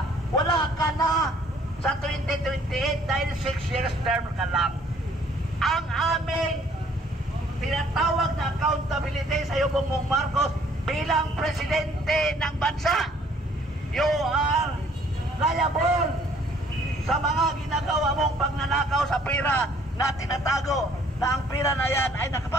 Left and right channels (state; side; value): normal; both; correlation 0.60